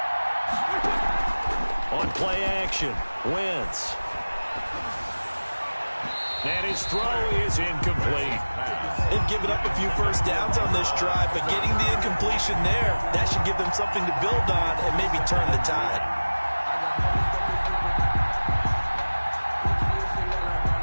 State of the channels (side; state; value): both; inverted; correlation -1.00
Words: On play action, Wentz. And his throw is incomplete. They've given up a few 1st downs on this drive, but getting the incompletion there, that should give them something to build on and maybe turn the tide.